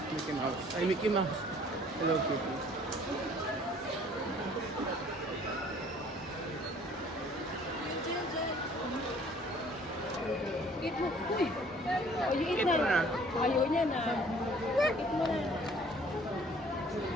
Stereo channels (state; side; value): normal; both; correlation 0.55